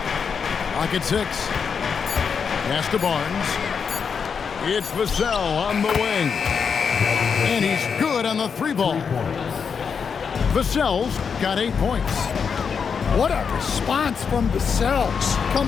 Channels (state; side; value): quieter; right; 6.3 dB